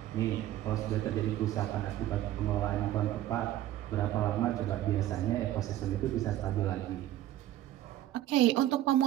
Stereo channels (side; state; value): left; quieter; 13.4 dB